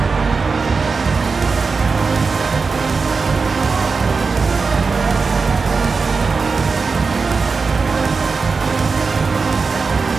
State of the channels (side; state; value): left; quieter; 4.6 dB